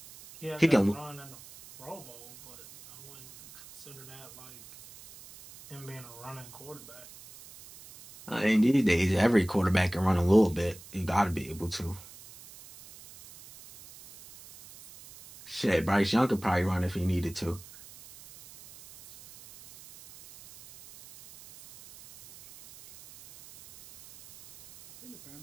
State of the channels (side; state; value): right; noise; hiss, 19 dB below the sound